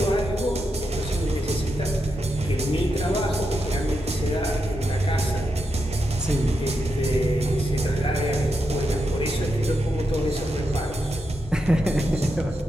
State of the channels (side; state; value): both; normal; correlation 0.85